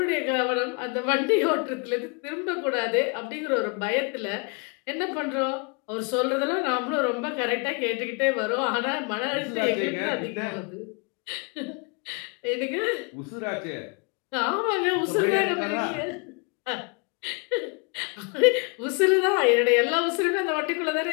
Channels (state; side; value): quieter; right; 33.3 dB